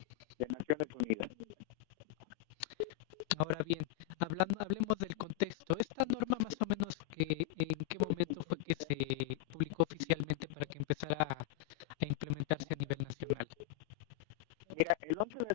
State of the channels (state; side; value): quieter; right; 18.1 dB